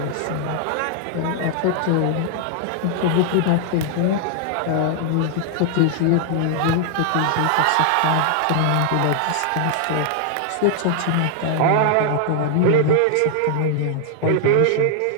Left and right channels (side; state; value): both; different; correlation 0.00